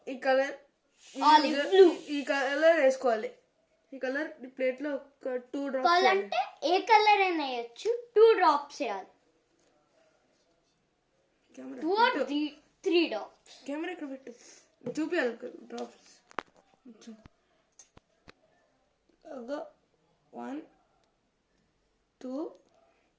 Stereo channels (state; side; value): identical; both; correlation 1.00